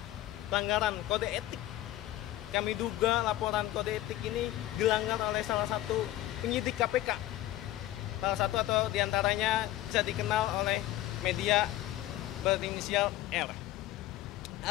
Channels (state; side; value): quieter; right; 14.8 dB